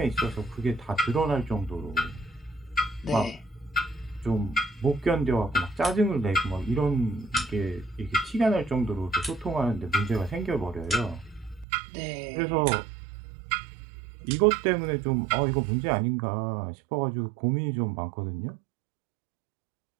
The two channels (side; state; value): left; drops out; at 11.7 s